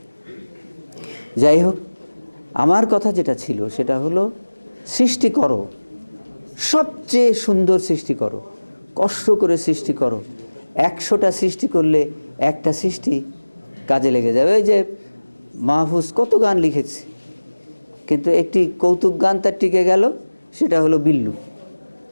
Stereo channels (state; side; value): inverted; both; correlation -1.00